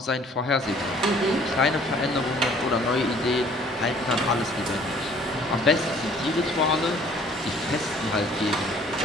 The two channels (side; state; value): both; normal; correlation 0.55